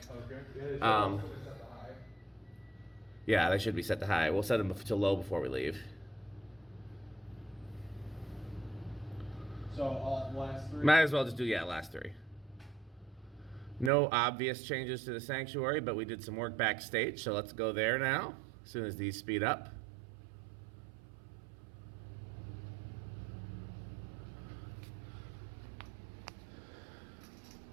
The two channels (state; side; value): drops out; left; at 13.9 s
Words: Okay. Yeah, they should be set to high. We'll set them to low before we leave. So all last 3. Might as well just do, last 3. No obvious changes to the sanctuary, but we did some work backstage, so let's go there now, as soon as these speed up.